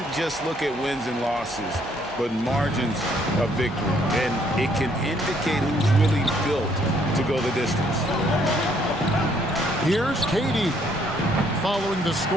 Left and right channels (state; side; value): normal; both; correlation 0.67